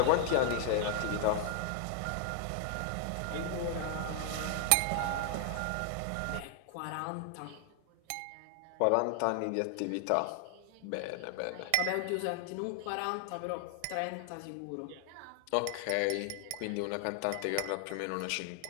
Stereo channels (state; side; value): different; both; correlation 0.00